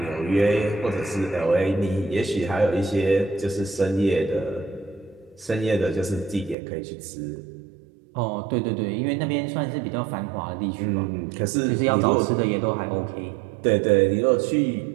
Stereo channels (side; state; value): left; drops out; at 6.6 s